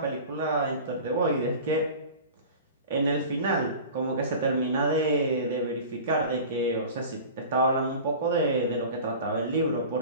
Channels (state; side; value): inverted; both; correlation -0.38